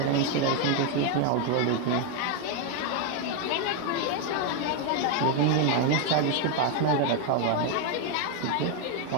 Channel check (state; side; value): different; both; correlation 0.01